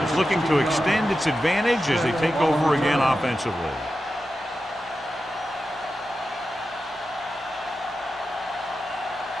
is looking to extend its advantage as they take over again offensively.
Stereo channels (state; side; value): normal; both; correlation 0.91